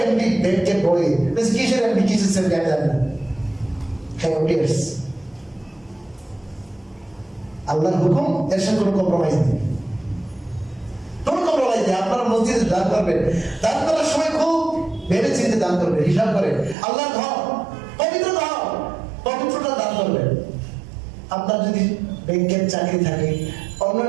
এমডি ব্যাংকের বড় কিসের এমডি, কিসের সেমডি আমি জানি না, আল্লাহর হুকুম, এর সাথে কোনো কম্প্রোমাইজ নেই, কোনো কম্প্রোমাইজ নেই। আপনারা মসজিদে দান করবেন, দান করার সময় খুব ভেবে চিন্তে দান করবেন, হিসাব করে। আল্লাহর ঘর, পবিত্র ঘর, পবিত্রটা দান করবেন। আপনার যদি ব্যাংকের চাকরি থাকে,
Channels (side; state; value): left; drops out; at 16.8 s